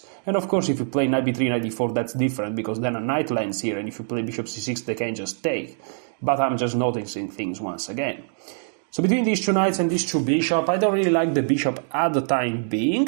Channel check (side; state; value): left; silent; digital silence